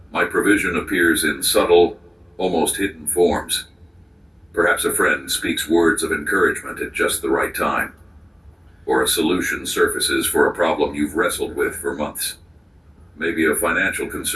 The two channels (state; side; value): identical; both; correlation 1.00